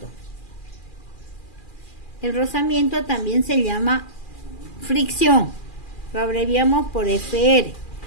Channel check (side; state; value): right; late; 2.4 ms